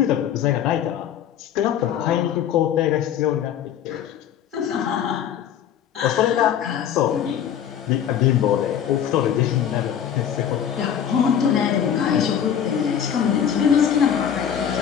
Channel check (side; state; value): right; quieter; 9.1 dB